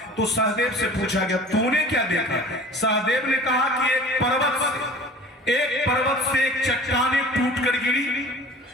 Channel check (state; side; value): normal; both; correlation 0.43